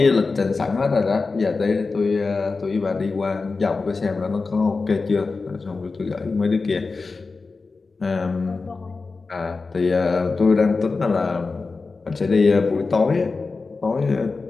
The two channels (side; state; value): right; quieter; 4.1 dB